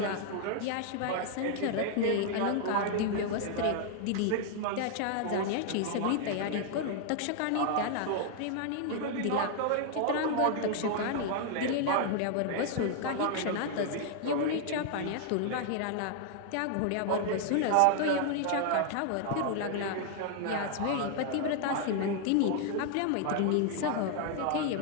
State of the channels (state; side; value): different; both; correlation 0.00